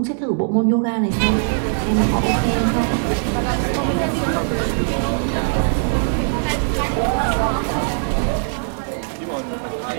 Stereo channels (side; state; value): left; silent; digital silence